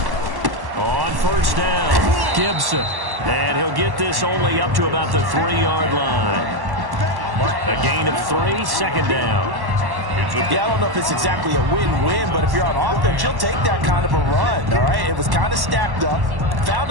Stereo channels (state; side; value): late; left; 1.1 ms